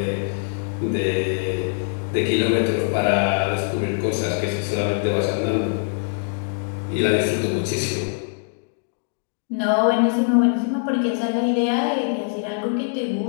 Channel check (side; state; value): right; silent; digital silence